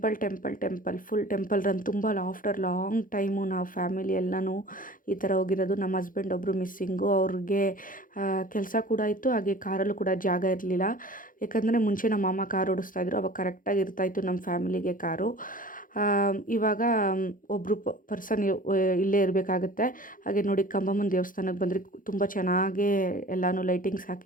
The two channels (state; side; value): late; right; 0.40 ms